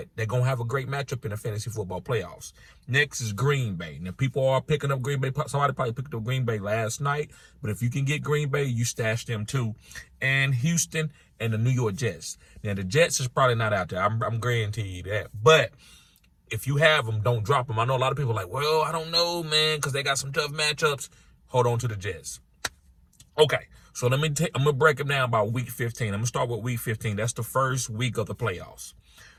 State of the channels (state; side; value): identical; both; correlation 1.00